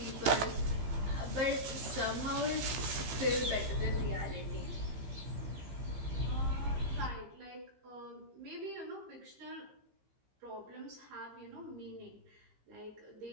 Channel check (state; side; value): late; left; 15 ms